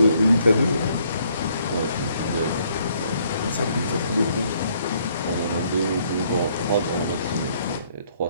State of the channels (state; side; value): inverted; both; correlation -0.67